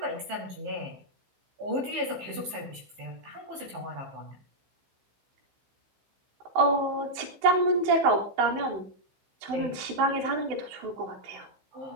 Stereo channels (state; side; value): late; left; 15 ms